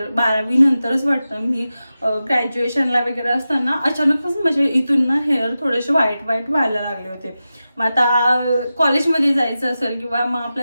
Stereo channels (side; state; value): both; inverted; correlation -0.93